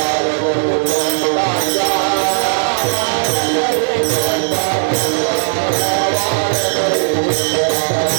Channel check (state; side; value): silent; left; 69 dB below the other